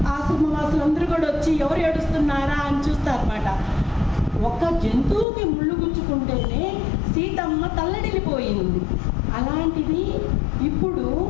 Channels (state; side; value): drops out; right; at 5.2 s